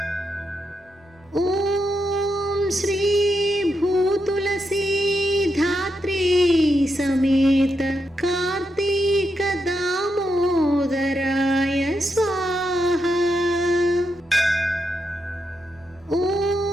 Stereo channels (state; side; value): normal; both; correlation 0.83